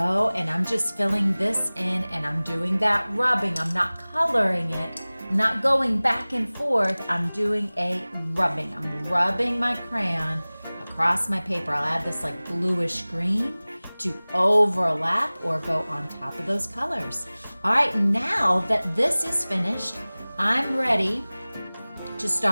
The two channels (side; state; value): both; inverted; correlation -0.99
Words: And I'm just filling this in and I'm doing that rubbing. I'm not coloring it. I'm not going back and forth. I'm doing a rubbing. I'm rubbing my crayon across my paper. I'll add this like bluish green to overlap or go on top of those colors. All right, now that this is finished, I'm ready to